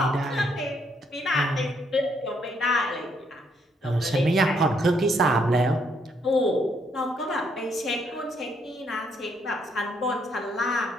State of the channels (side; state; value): both; normal; correlation 0.72